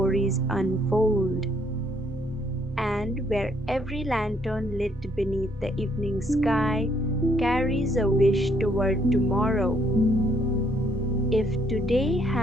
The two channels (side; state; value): both; normal; correlation 0.68